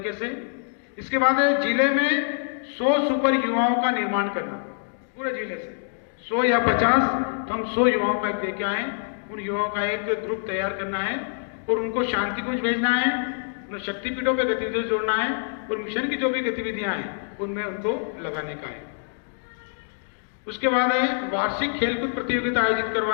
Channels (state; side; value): silent; right; digital silence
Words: से। इसके बाद है जिले में 100 सुपर युवाओं का निर्माण करना, पूरे जिले से 100 या 50, तो हम 100 युवाओं का एक दे के आए। उन युवाओं का एक ग्रुप तैयार करना है और उनको शांति कुंज भेजना है, उन्हें शक्तिपीठों पे गतिविधियों से जोड़ना है और मिशन की जो भी गतिविधियां हैं उनमें उनको लगाने का है। उसके बाद है वार्षिक खेलकूद प्रतियोगिता आयोजित